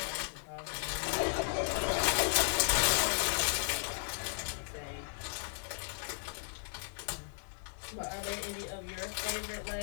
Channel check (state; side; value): silent; right; digital silence